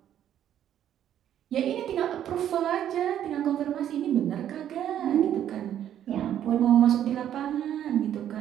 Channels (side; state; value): left; quieter; 10.6 dB